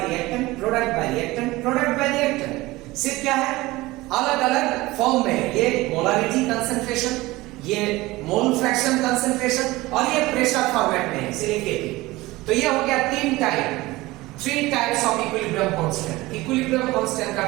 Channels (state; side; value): quieter; left; 19.8 dB